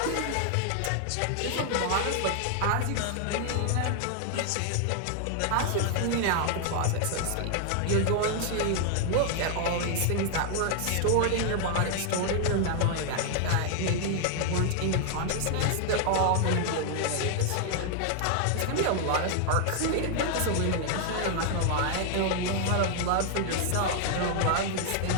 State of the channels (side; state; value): both; different; correlation 0.00